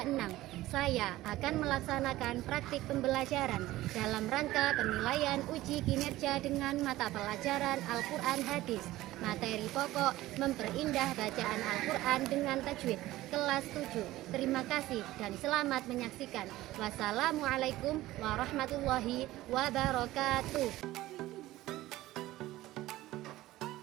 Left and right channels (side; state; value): left; quieter; 16.5 dB